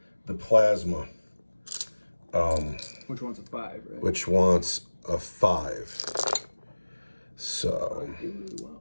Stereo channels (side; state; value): both; inverted; correlation -1.00